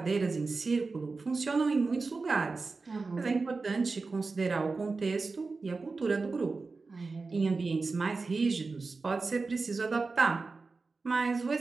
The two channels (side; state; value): left; quieter; 4.0 dB